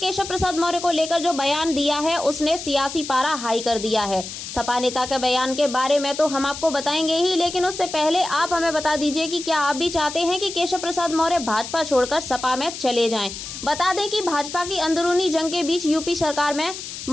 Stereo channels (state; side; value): noise; left; hiss, 9 dB below the sound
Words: प्रसाद मौर्य को लेकर जो बयान दिया है उसने सियासी पारा हाई कर दिया है। सपा नेता के बयान के बारे में तो हम आपको बताएंगे ही, लेकिन उससे पहले आप हमें बता दीजिए कि क्या आप भी चाहते हैं कि केशव प्रसाद मौर्य भाजपा छोड़कर सपा में चले जाएं। बता दें कि भाजपा की अंदरूनी जंग के बीच यूपी सरकार में